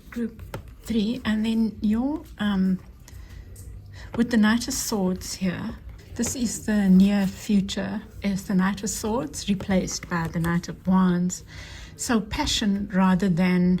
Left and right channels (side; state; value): both; identical; correlation 1.00